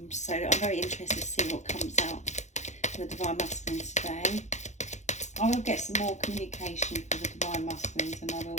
So I'm very interested to see what comes out for the Divine Masculines today. I will get some more communication for the Divine Masculines, and I will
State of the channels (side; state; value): right; late; 0.34 ms